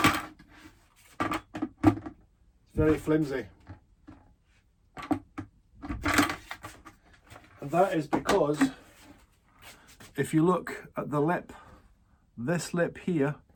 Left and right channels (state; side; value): identical; both; correlation 1.00